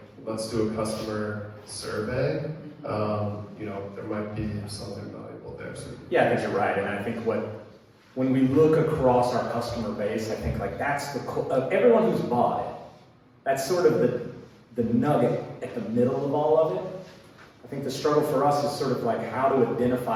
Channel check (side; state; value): both; identical; correlation 1.00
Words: let's do a customer survey, there might be something valuable there. So. Yeah, I think you're right, and I think when we look across our customer base, I think like that's everyone who's bought it, that's sort of the nugget at the middle of all of it. I think the struggle for us is sort of like how to